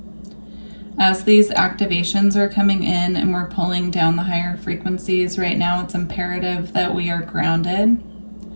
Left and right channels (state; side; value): inverted; both; correlation -1.00